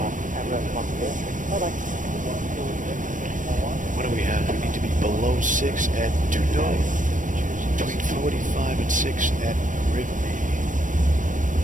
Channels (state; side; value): late; left; 0.38 ms